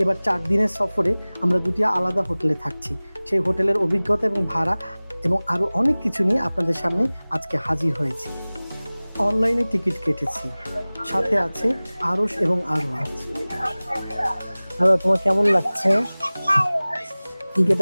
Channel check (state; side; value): inverted; both; correlation -0.99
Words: এবার 4 দিনের সফরে আমরা দুটি আলাদা হোটেলে থাকছি। সেই হোটেলের অভিজ্ঞতা এবং ভাড়া এবং আরও অনেক কিছু নিয়ে আপনাদের সামনে আজকে হাজির হয়েছি। অনলাইনে টিকিট কেটেছি, সাথে আছে আরশ এবং আরওয়াজ। আর তোমার কেমন লাগছে?